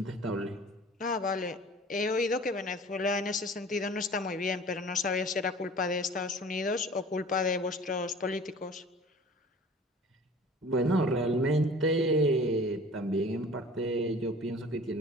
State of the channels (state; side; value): normal; both; correlation 0.44